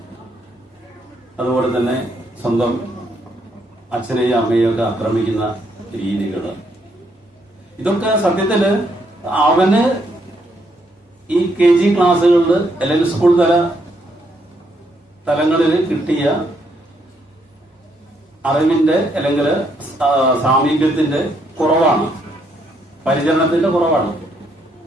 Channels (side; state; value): both; normal; correlation 0.74